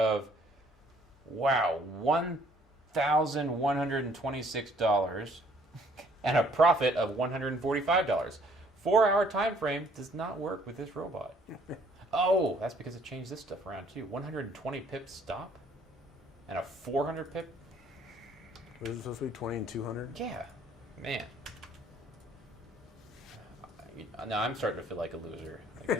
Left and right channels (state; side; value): normal; both; correlation 0.61